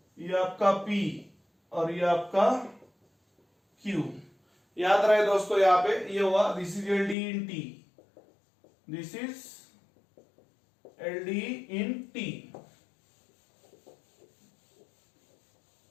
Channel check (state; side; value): drops out; right; at 7.2 s